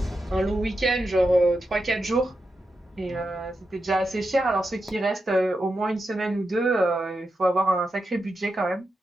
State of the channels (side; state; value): both; normal; correlation 0.88